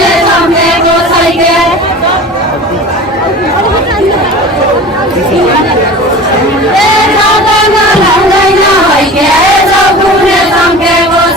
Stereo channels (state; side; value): normal; both; correlation 0.37